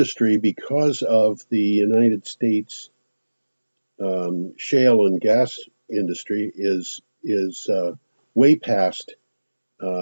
because of the United States shale and gas industry, is way past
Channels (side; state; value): both; inverted; correlation -1.00